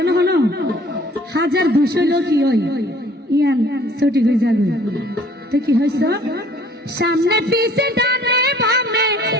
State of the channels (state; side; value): normal; both; correlation 0.55